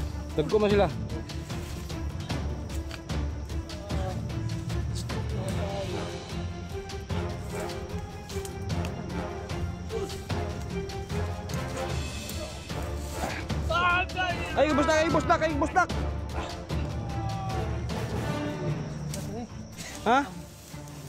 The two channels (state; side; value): identical; both; correlation 1.00